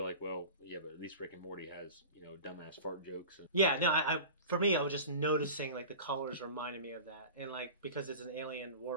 like, well, yeah, but at least Rick and Morty has, dumbass fart jokes. And Yeah, no, I for me, I was just noticing like the colors reminded me of that, and like because it's an alien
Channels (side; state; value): both; inverted; correlation -0.35